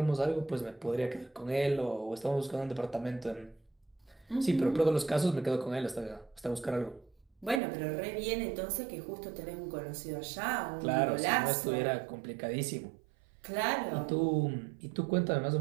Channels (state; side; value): drops out; left; at 7.6 s